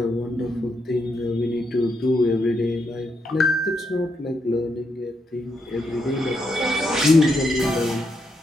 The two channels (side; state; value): both; normal; correlation 0.80